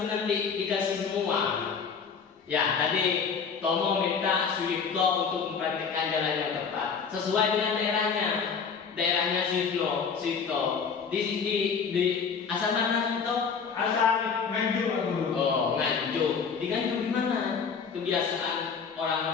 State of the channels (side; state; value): right; quieter; 6.0 dB